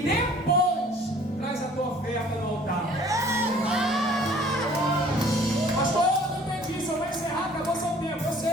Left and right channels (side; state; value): both; normal; correlation 0.53